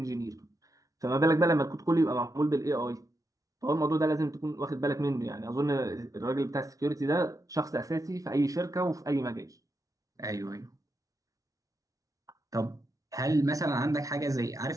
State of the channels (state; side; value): late; left; 0.17 ms